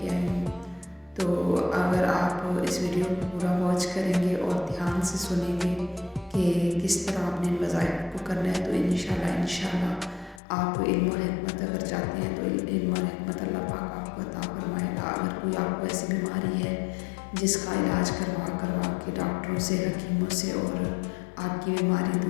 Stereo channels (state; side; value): drops out; right; at 10.4 s